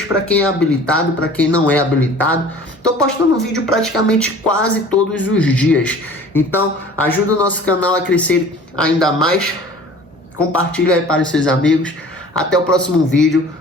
para quem é habilitado, para quem não é habilitado. Tô postando vídeo praticamente quase todos os dias, então ajuda o nosso canal a crescer ainda mais. Compartilha aí para os seus amigos. Até o próximo vídeo.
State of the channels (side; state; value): both; normal; correlation 0.46